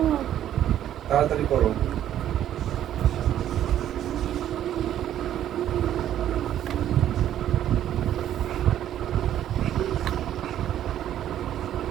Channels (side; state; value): left; quieter; 11.3 dB